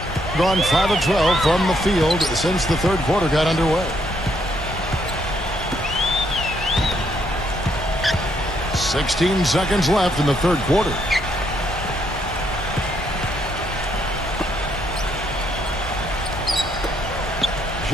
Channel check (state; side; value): normal; both; correlation 0.73